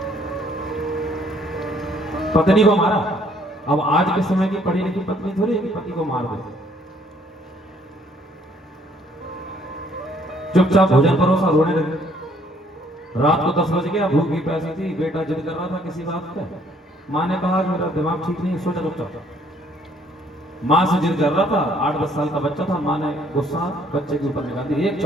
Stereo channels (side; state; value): both; normal; correlation 0.64